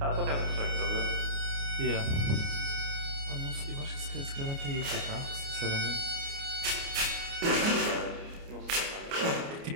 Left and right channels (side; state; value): left; late; 29 ms